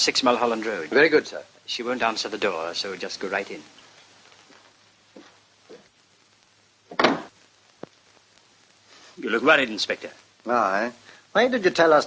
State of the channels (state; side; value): identical; both; correlation 1.00